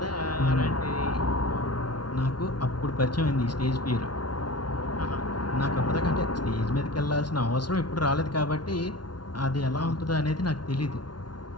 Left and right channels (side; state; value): right; late; 0.70 ms